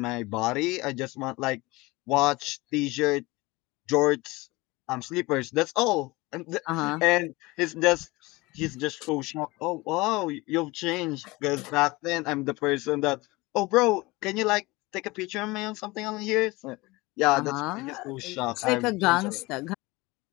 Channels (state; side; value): quieter; right; 22.3 dB